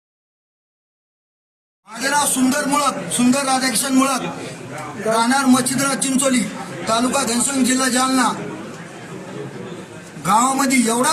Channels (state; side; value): identical; both; correlation 1.00